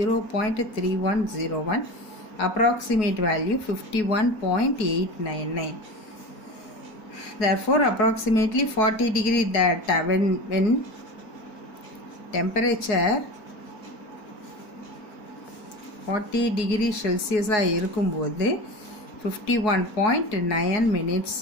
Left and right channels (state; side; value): late; right; 4.7 ms